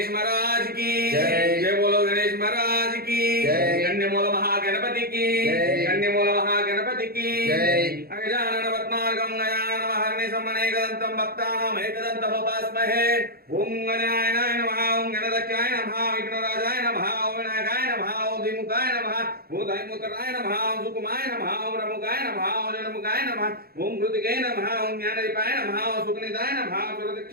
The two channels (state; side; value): late; left; 0.44 ms